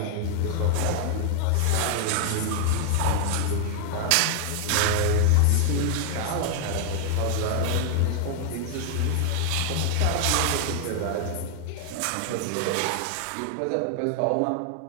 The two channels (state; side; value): different; both; correlation 0.00